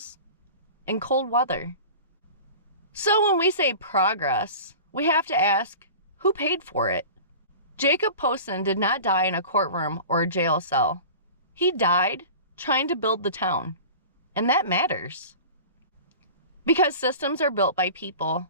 and cold weather. So when we say progress, we have to ask, who paid for it? Jacob Posson did not die in a courtroom or a jail cell. He died trying to build the town, and that matters. Because systems are built by people,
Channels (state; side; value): inverted; both; correlation -0.37